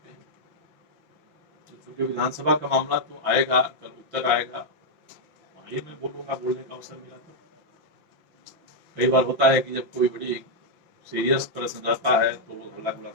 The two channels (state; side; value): late; left; 6.0 ms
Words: क्योंकि विधानसभा का मामला तो आएगा, कल उत्तर आएगा, वही मैं बोलूंगा, बोलने का अवसर मिला तो। कई बार होता है कि जब कोई बड़ी सीरियस प्रश्न रहता है तो लोग हल्ला गुल्ला